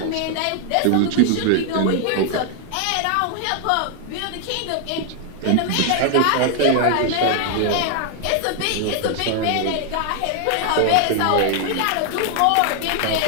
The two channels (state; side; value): different; both; correlation 0.00